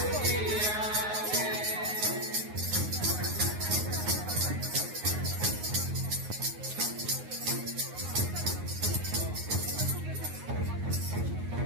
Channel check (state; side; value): late; left; 9.6 ms